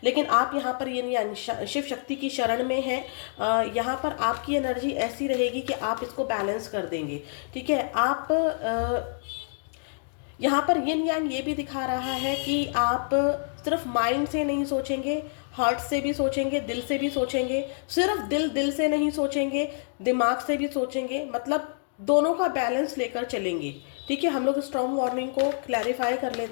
लेकिन आप यहाँ पर ये शिव शक्ति की शरण में है। यहाँ पर आपकी एनर्जी ऐसी रहेगी कि आप इसको बैलेंस कर देंगे। ठीक है, आप यहाँ पर यिन यांग ये भी दिखा रहा है कि आप सिर्फ माइंड से नहीं सोचेंगे, हार्ट से भी सोचेंगे, दिल से भी सोचेंगे। सिर्फ दिल से नहीं सोचेंगे, दिमाग से भी सोचेंगे, मतलब दोनों का बैलेंस लेकर चलेंगे। ठीक है, हम लोग स्टॉर्म वार्निंग को क्लैरिफाई कर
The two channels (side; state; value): right; silent; digital silence